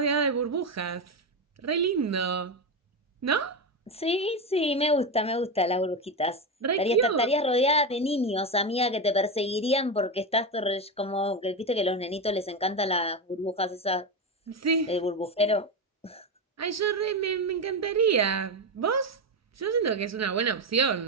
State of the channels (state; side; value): normal; both; correlation 0.14